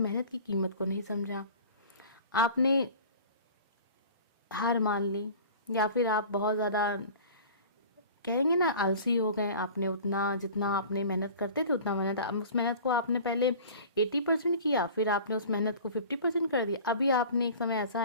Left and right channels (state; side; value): inverted; both; correlation -0.42